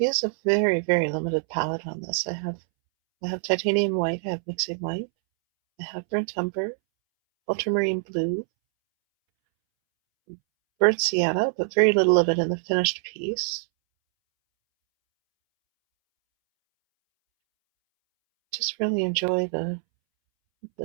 I use a very, very limited palette on this. I have titanium white, I have mixing white, I have burnt umber, ultramarine blue, burnt sienna, but very little of it in the finished piece. Just really enjoy the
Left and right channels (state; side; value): silent; left; 62 dB below the other